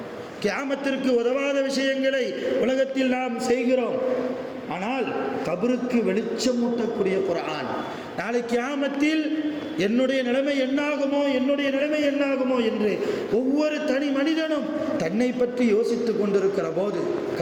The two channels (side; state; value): both; identical; correlation 1.00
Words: கியாமத்திற்கு உதவாத விஷயங்களை உலகத்தில் நாம் செய்கிறோம். ஆனால் கபருக்கு வெளிச்சமூட்டக்கூடிய குர்ஆன், நாளை கியாமத்தில் என்னுடைய நிலைமை என்னாகுமோ, என்னுடைய நிலைமை என்னாகுமோ என்று ஒவ்வொரு தனி மனிதனும் தன்னை பற்றி யோசித்து கொண்டிருக்கிற போது,